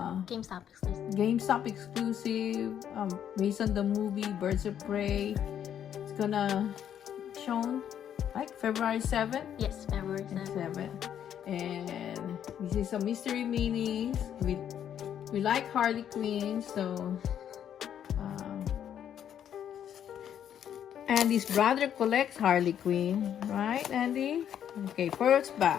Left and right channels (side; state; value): right; quieter; 9.6 dB